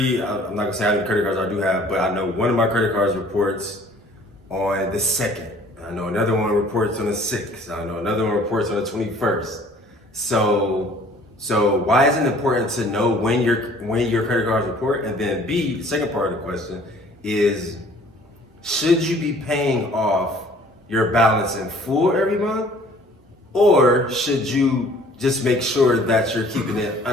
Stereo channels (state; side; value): normal; both; correlation 0.54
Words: I'm not gonna say how many credit cards I do have, but I know one of my credit cards reports on the 2nd. I know another one reports on the 6th. I know another one reports on the 21st. So why is it important to know when your credit cards report? And then B, the second part of the question is, should you be paying off your balance in full every month? Or should you just make sure that you're keeping it